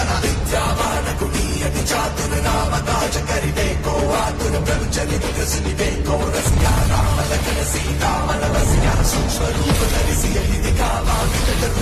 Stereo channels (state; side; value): identical; both; correlation 1.00